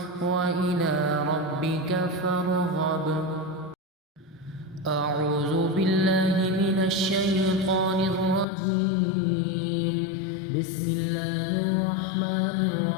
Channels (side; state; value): right; drops out; at 8.5 s